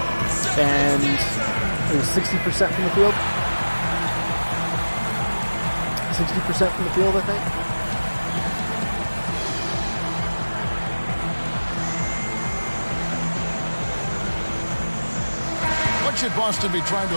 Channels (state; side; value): inverted; both; correlation -1.00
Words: And it was 60% from the field. 60% from the field, I think. What should Boston be trying to